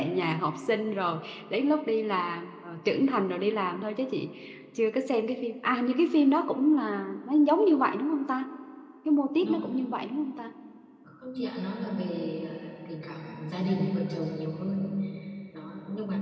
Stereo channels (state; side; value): identical; both; correlation 1.00